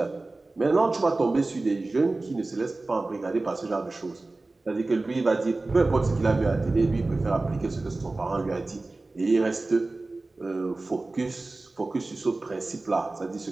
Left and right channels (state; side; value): quieter; left; 3.2 dB